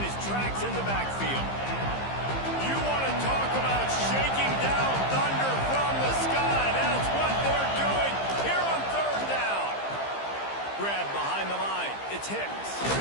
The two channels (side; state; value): right; late; 15 ms